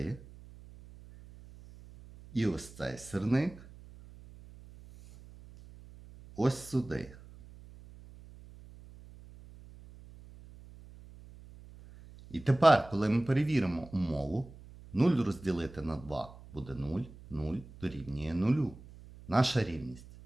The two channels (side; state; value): right; noise; hum, 19 dB below the sound